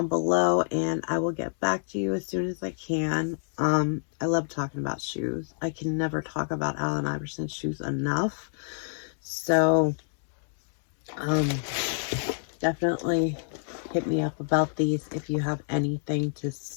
below and I will get back to you as soon as I can. I love talking about shoes. I can never talk about Allen Iverson's shoes enough. So definitely hit me up about these if you have anything to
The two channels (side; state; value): right; silent; digital silence